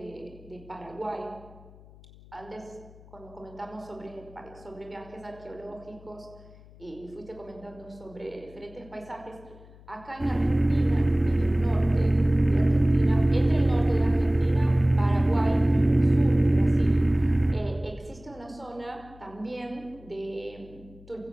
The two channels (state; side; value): noise; left; hum, 22 dB below the sound